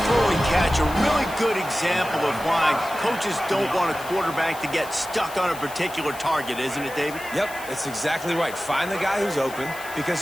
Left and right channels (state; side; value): noise; left; hiss, 16 dB below the sound